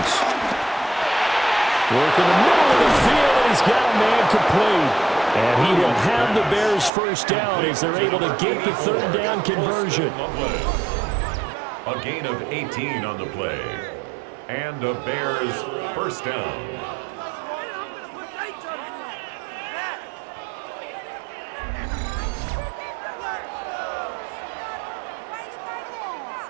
Working the middle of the field, and he's got a man complete. And he will have the Bears first down as they're able to get the 3rd down conversion. A gain of 18 on the play. And a Bears first down.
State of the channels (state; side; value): drops out; left; at 6.9 s